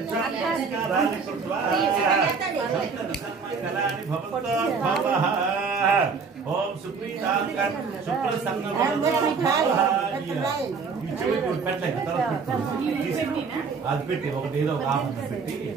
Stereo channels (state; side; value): quieter; left; 5.2 dB